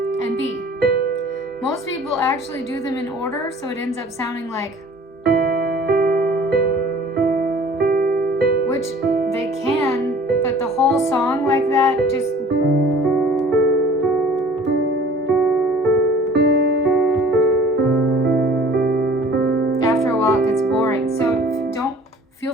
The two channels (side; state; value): both; normal; correlation 0.49